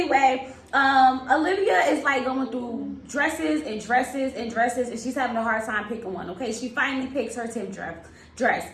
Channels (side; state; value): both; identical; correlation 1.00